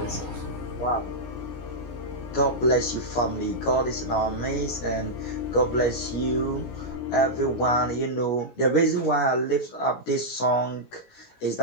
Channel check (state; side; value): late; right; 17 ms